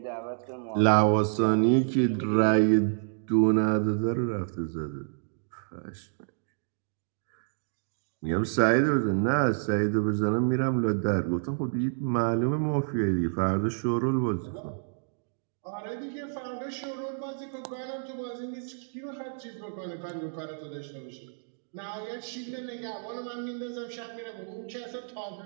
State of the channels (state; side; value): silent; left; digital silence